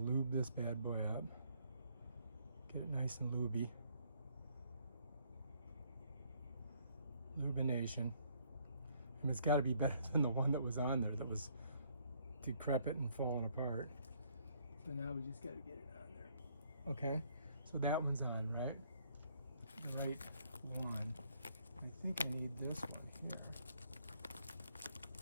this bad boy up. Get it nice and lubey. Lubination. And it's got to be better than the one that was on there that was decrepit and falling apart. So now we just got to get it on there. Okay, so that one's on, right? The right one. I think I need this one here.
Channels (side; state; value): both; inverted; correlation -0.67